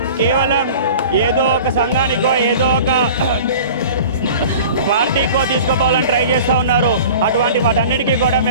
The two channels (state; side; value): inverted; both; correlation -0.41